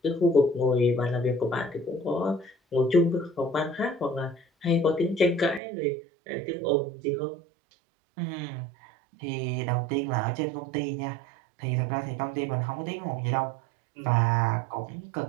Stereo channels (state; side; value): drops out; left; at 5.6 s